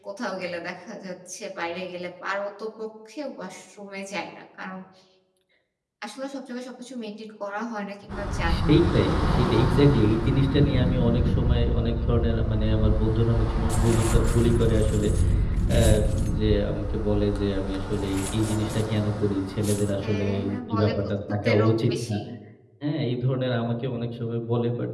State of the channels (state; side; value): identical; both; correlation 1.00